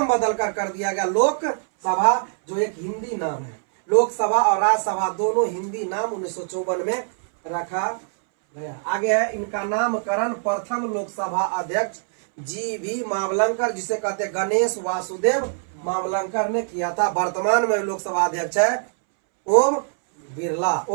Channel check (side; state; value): left; silent; 63 dB below the other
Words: बदलकर कर दिया गया लोकसभा, जो एक हिंदी नाम है। लोकसभा और राज्यसभा दोनों हिंदी नाम 1954 में रखा गया। आगे है इनका नामकरण प्रथम लोकसभा अध्यक्ष जी.वी. मावलंकर, जिसे कहते गणेश वासुदेव मावलंकर ने किया था। वर्तमान में लोकसभा अध्यक्ष है ओम